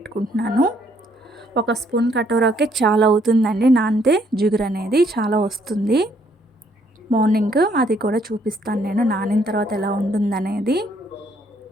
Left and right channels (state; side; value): normal; both; correlation 0.68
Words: 1 స్పూన్ కటోరాకే చాలా అవుతుందండి నానితే, జిగురు అనేది చాలా వస్తుంది. మార్నింగ్ అది కూడా చూపిస్తాను నేను నానిన తర్వాత ఎలా ఉంటుందనేది.